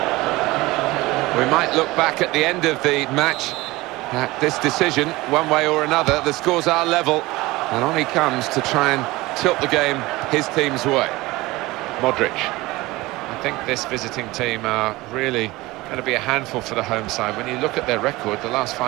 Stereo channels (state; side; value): quieter; left; 20.2 dB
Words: We might look back at the end of the match at this decision, one way or another. The scores are level, and on he comes to try and tilt the game his team's way. Modric. I think this visiting team are really going to be a handful for the home side. When you look at their record, the last